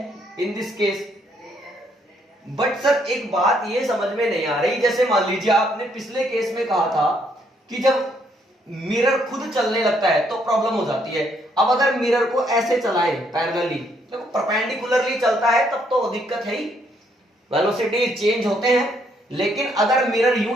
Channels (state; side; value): normal; both; correlation 0.71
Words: in this case. But sir एक बात ये समझ में नहीं आ रही, जैसे मान लीजिए आपने पिछले केस में कहा था कि जब मिरर खुद चलने लगता है तो प्रॉब्लम हो जाती है। अब अगर मिरर को ऐसे चलाए पैरेलली, देखो परपेंडिकुलरली चलता है तब तो दिक्कत है ही, वेलोसिटी चेंज होते हैं। लेकिन अगर मिरर